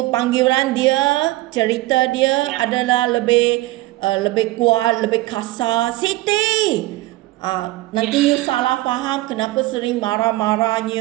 dia, cerita dia adalah lebih kuat, lebih kasar. Siti, nanti you salah faham kenapa sering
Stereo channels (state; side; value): quieter; left; 18.6 dB